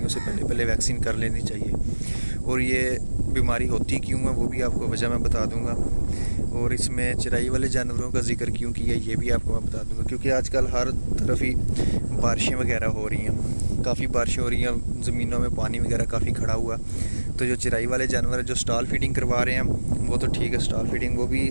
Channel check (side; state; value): both; inverted; correlation -1.00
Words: سے پہلے ویکسین کر لینی چاہیے۔ اور یہ بیماری ہوتی کیوں ہے وہ بھی آپ کو وجہ میں بتا دوں گا، اور اس میں چرائی والے جانوروں کا ذکر کیوں کیا یہ بھی آپ کو میں بتا دوں گا، کیونکہ آج کل ہر طرف ہی بارشیں وغیرہ ہو رہی ہیں، کافی بارشیں ہو رہی ہیں، زمینوں میں پانی وغیرہ کافی کھڑا ہوا۔ تو جو چرائی والے جانور جو سٹال فیڈنگ کروا رہے ہیں وہ تو ٹھیک ہے، سٹال فیڈنگ وہ بھی